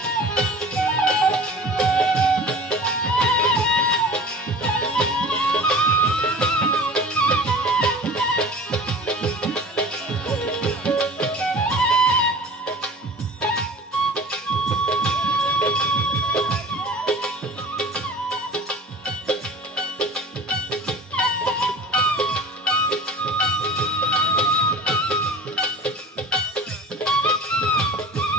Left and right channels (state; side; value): normal; both; correlation 0.41